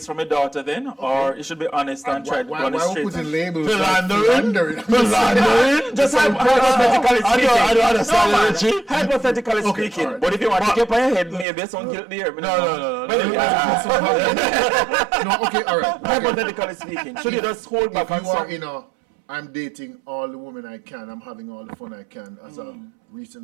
from your daughter then, or you should be honest and try to why run it we straight? putting labels? Philandering? Philandering? Just hypothetically I speaking. don't understand No, it, man. Richie. Hypothetically Okay, speaking. alright. But if you want to keep on your head, maybe some guilt there. No. But anyway, No, okay, all right. Okay. hypothetically speaking, should you just hold back If on you are some? in a, I'm dating all the women I can, I'm having all the fun I can as a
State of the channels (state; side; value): drops out; left; at 11.5 s